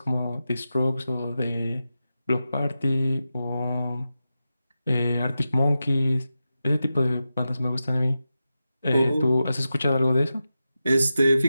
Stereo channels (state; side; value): inverted; both; correlation -0.91